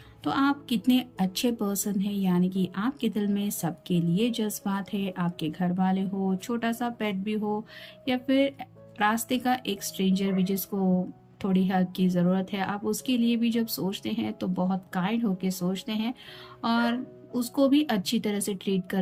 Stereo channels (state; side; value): identical; both; correlation 1.00